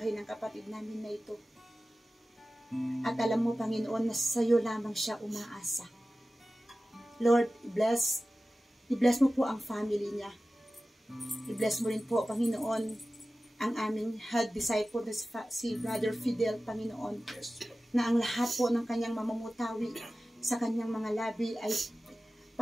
ng kapatid namin na ito. At alam mo, Panginoon, na sa iyo lamang siya umaasa. Lord, i-bless mo po ang family niya. I-bless mo rin po, Panginoon, ang aming head disciple na si Brother Fidel, Panginoon, na ang lahat po ng kanyang mamamutawi sa kanyang mga labi ay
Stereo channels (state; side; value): normal; both; correlation 0.96